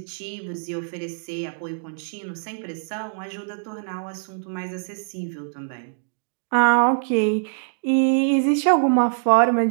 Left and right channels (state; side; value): silent; left; digital silence